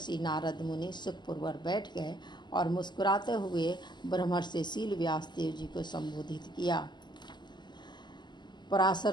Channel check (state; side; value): late; right; 0.21 ms